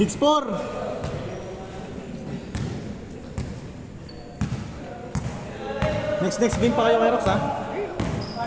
Next game pa kayo kay Rox, ha?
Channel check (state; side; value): identical; both; correlation 1.00